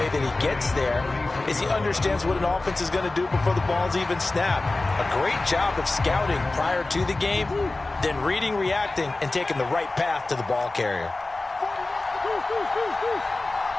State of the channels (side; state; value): right; quieter; 3.1 dB